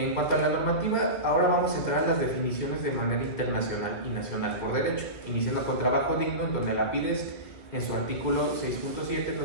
cuanto a la normativa, ahora vamos a entrar a las definiciones de manera internacional y nacional por derecho, iniciando con trabajo digno, en donde la PIDES, en su artículo 6.7,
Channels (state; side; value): late; right; 2.2 ms